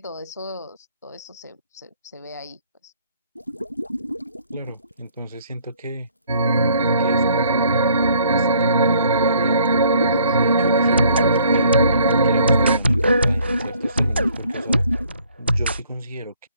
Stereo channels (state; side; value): inverted; both; correlation -0.61